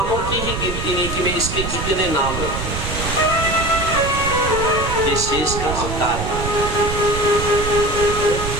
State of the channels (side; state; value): right; noise; rumble, 5 dB below the sound